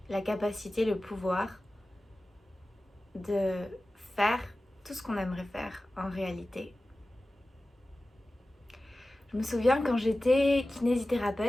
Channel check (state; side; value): normal; both; correlation 0.95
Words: la capacité, le pouvoir de faire tout ce qu'on aimerait faire en réalité. Je me souviens quand j'étais